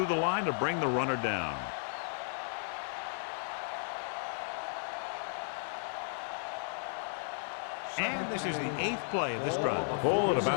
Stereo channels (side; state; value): right; silent; digital silence